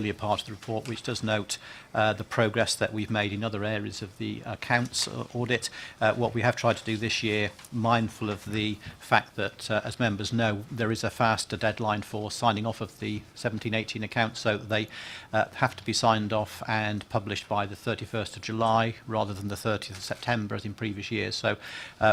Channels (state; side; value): identical; both; correlation 1.00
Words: part of the report, which does note the progress that we've made in other areas of the accounts audit. What we have tried to do this year, mindful of the fact that, as members know, there is a faster deadline for signing off of the 17-18 accounts, so they have to be signed off and published by the 31st of July rather than the 30th of September as in previous years. So